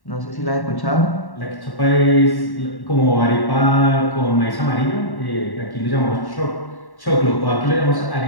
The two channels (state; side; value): late; right; 1.1 ms